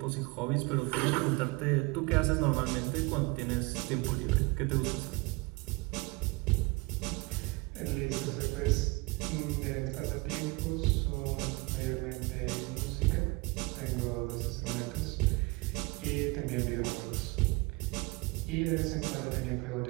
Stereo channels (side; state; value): left; quieter; 25.6 dB